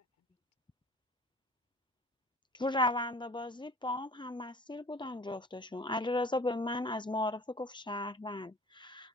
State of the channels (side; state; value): both; normal; correlation 0.45